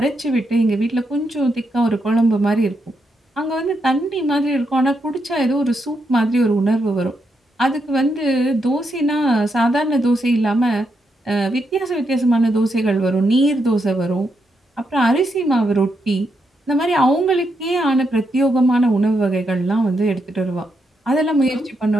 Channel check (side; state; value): both; normal; correlation 0.81